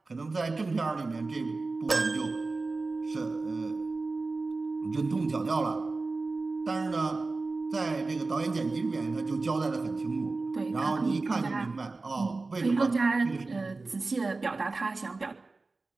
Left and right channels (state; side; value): quieter; left; 3.6 dB